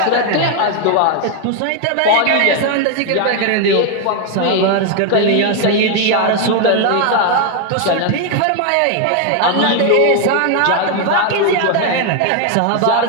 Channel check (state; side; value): different; both; correlation 0.01